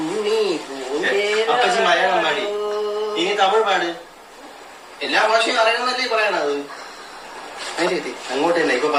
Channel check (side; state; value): both; identical; correlation 1.00